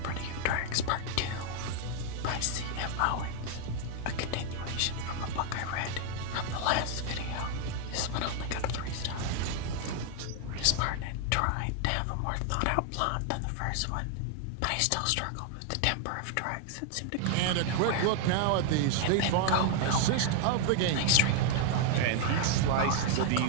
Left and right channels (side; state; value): both; different; correlation 0.00